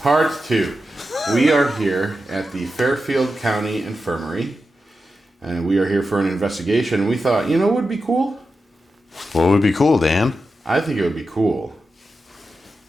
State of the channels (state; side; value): normal; both; correlation 0.90